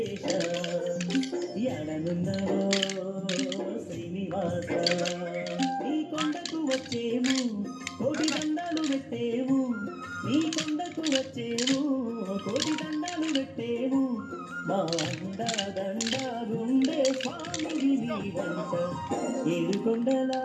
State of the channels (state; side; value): identical; both; correlation 1.00